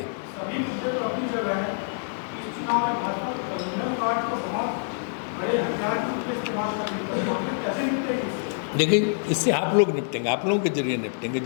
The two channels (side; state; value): right; silent; digital silence